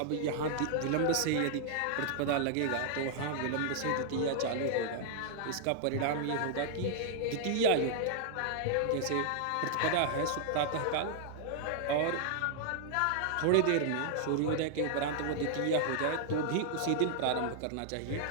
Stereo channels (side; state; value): both; different; correlation -0.01